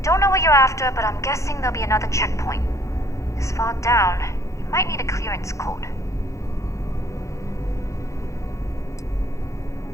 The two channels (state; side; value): late; right; 0.15 ms